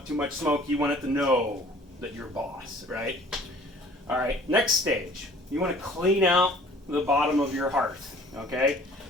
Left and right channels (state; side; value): normal; both; correlation 0.52